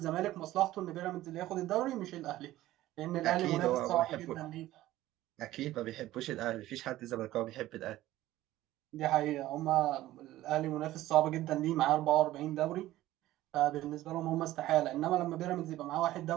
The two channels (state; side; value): quieter; left; 15.4 dB